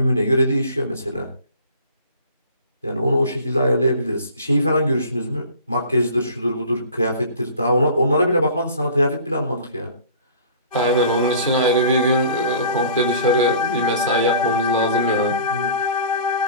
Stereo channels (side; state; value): both; inverted; correlation -0.45